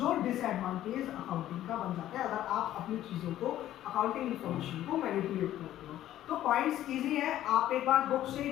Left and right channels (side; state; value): right; quieter; 12.9 dB